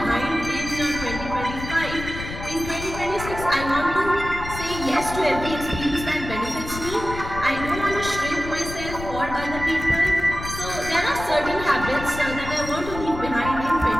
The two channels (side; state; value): left; noise; rumble, 9 dB below the sound